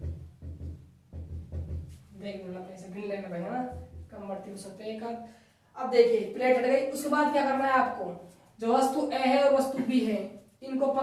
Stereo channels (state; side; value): identical; both; correlation 1.00